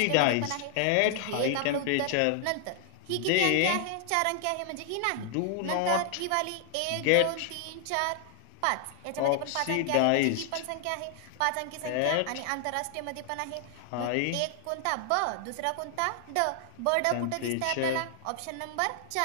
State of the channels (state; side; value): different; both; correlation 0.00